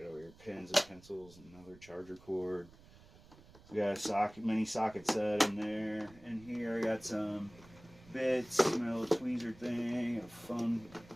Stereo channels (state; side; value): noise; right; rumble, 23 dB below the sound